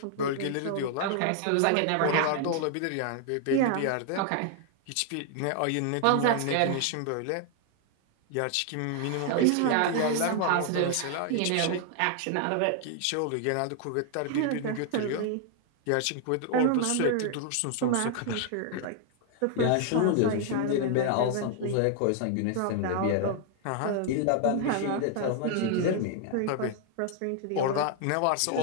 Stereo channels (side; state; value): both; different; correlation 0.00